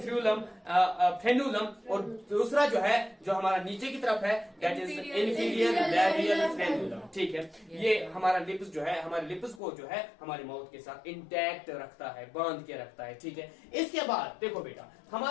फ्रेन्यूलम। और दूसरा जो है, जो हमारा नीचे की तरफ है, that is inferior labial frenulum, ठीक है। ये हमारा लिप्स जो है, हमारे लिप्स को जो है हमारे माउथ के साथ इंटैक्ट रखता है, बांध के रखता है, ठीक है। इसके बाद देखो बेटा,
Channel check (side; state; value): right; drops out; at 9.6 s